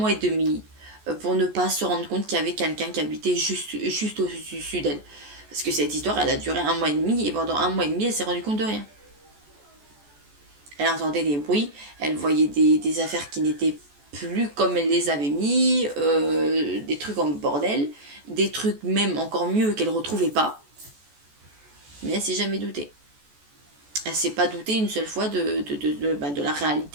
et demi pour ne pas se rendre compte qu'il y avait quelqu'un qui habitait juste au-dessus d'elle. Parce que cette histoire, elle a duré un mois et demi, et pendant un mois et demi, elle s'est rendue compte de rien. Elle entendait des bruits, elle voyait des affaires qui n'étaient plus comme elle les avait mis, des trucs en bordel, des trucs même encore mieux qu'elle ne retrouvait pas. Mais elle s'est jamais doutée. Elle s'est pas doutée une seule fois de la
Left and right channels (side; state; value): left; late; 14 ms